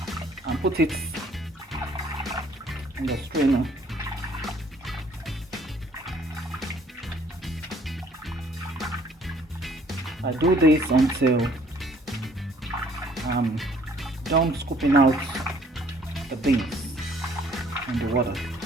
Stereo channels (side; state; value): both; normal; correlation 0.60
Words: and put it in the strainer. I do this until I'm done scooping out the beans in the water.